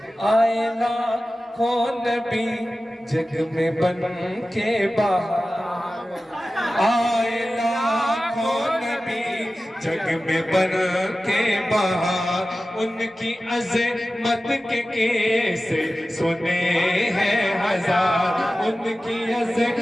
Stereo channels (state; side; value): normal; both; correlation 0.95